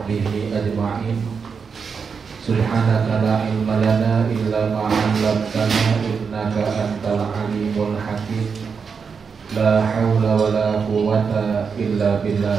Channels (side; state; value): left; quieter; 5.8 dB